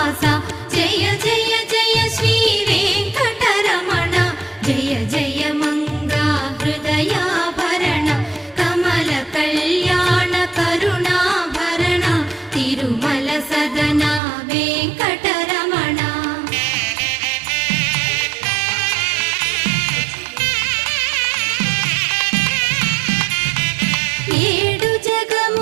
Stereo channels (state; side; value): drops out; left; at 14.2 s